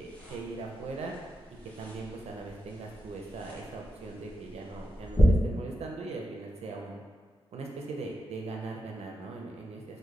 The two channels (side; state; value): both; normal; correlation 0.88